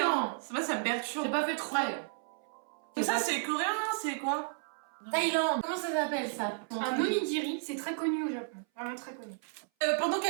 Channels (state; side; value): silent; left; 56 dB below the other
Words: hein. C'est pas, ça me perturbe. J'ai pas fait exprès. Mais ça, c'est coréen, non? C'est quoi? Thaïlande. Comment ça s'appelle ça? Un onigiri, c'est très connu au Japon. Vraiment très connu. Pendant